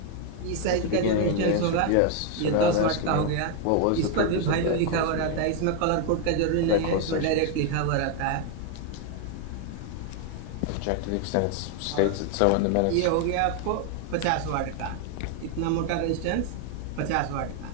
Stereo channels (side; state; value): both; different; correlation 0.01